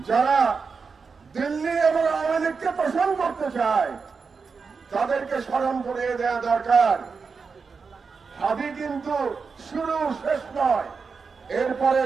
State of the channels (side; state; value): left; quieter; 5.1 dB